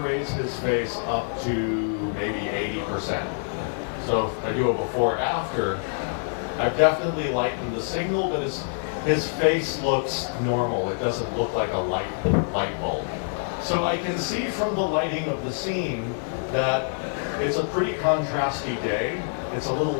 his face up to maybe 80%. So if I do a before-after, I've definitely lightened the signal, but his face looks normal. It doesn't look like a light bulb. So I can see from the lighting of the scene that it's a pretty contrasty day. It's a little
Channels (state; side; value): silent; right; 61 dB below the other